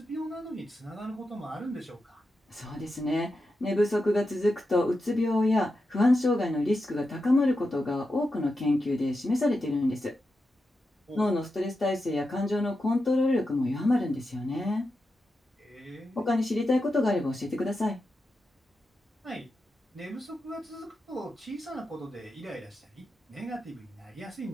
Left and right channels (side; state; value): both; normal; correlation 0.89